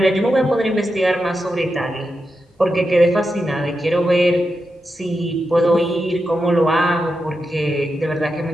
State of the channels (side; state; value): both; normal; correlation 0.88